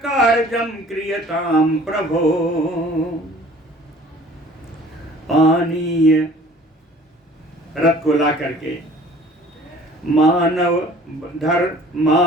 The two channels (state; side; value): normal; both; correlation 0.50